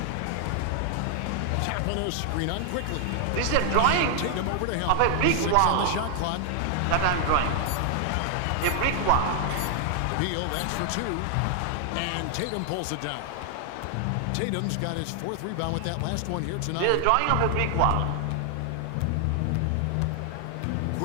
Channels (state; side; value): different; both; correlation 0.00